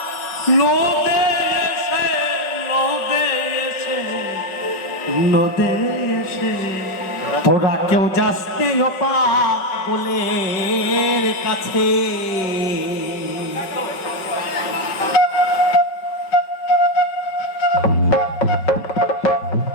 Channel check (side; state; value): right; late; 5.3 ms